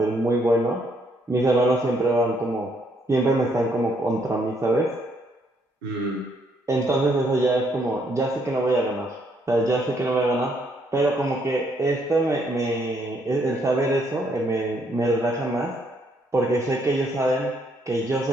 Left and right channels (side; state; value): both; normal; correlation 0.71